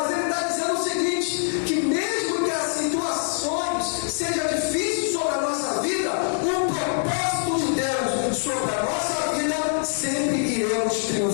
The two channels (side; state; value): right; silent; digital silence